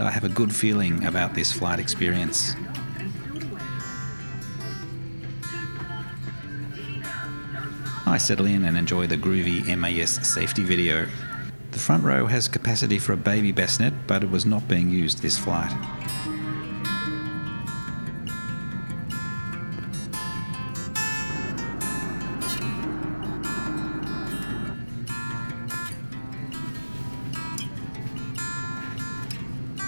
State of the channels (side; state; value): both; inverted; correlation -1.00